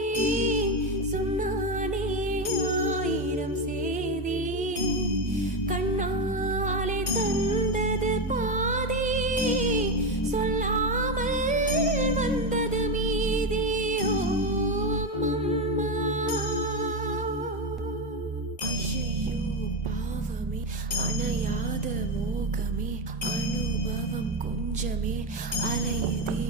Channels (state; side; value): normal; both; correlation 0.12